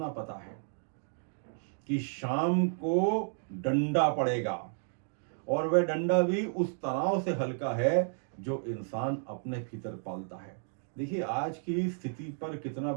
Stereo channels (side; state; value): left; silent; 56 dB below the other